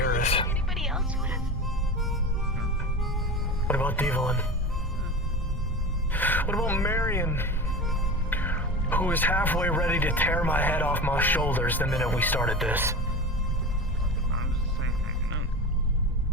Anybody else would have. What about Devlin? What about Marion? Who was halfway ready to tear my head off my shoulders the minute we started this?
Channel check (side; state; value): both; normal; correlation 0.29